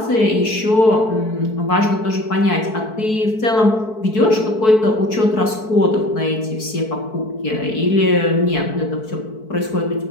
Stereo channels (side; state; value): right; late; 4.6 ms